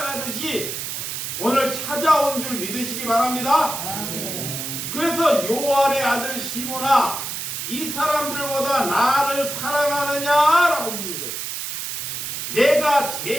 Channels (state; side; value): noise; right; hiss, 5 dB below the sound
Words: 오늘 찾아온 줄 믿으시기 바랍니다. 아멘. 그래서 요한의 아들 시몬아, 이 사람들보다 나를 사랑하느냐라고 묻는 거예요. 내가